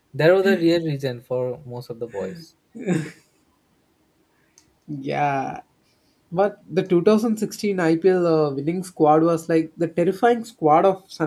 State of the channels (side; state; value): both; identical; correlation 1.00